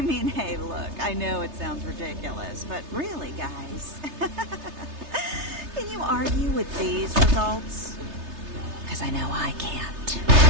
mean, hey, look, I know it sounds ridiculous, but really, guys, can you argue with these results? Because I know I can't.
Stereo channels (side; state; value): left; late; 3.3 ms